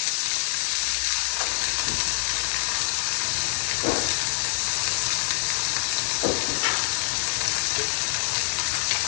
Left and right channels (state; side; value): silent; right; digital silence